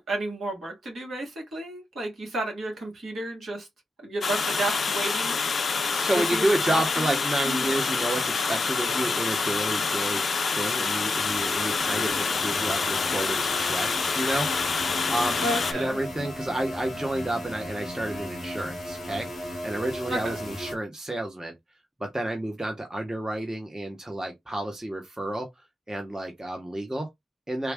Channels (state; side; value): normal; both; correlation 0.88